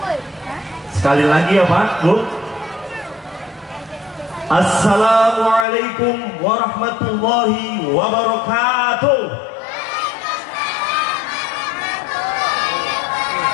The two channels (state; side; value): drops out; right; at 5.7 s